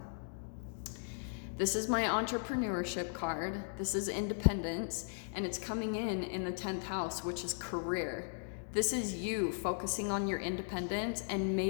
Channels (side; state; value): right; silent; digital silence